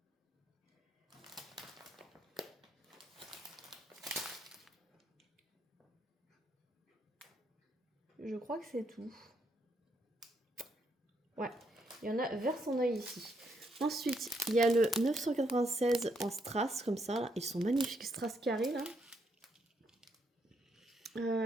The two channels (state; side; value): normal; both; correlation 0.75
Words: Je crois que c'est tout. Ouais, il y en a vers son œil ici. Ensuite, il y a le 996 en strass, comme ça. Là. Ils sont magnifiques, strass carré, là.